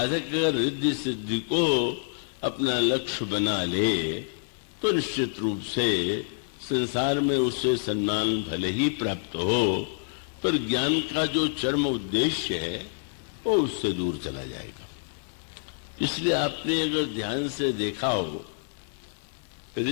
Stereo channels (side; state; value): right; silent; digital silence